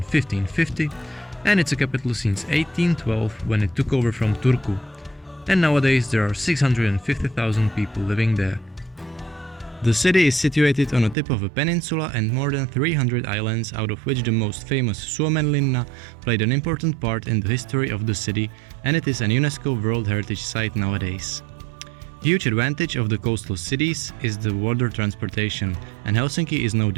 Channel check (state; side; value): drops out; left; at 11.2 s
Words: and it's a capital since 1812 when it took over from Turku. And nowadays there are 650,000 people living there. The city is situated on the tip of a peninsula and more than 300 islands, out of which the most famous Suomenlinna played an important part in the history of the city, and it is an UNESCO World Heritage Site nowadays. Huge advantage of the coastal cities is the water transportation, and Helsinki is no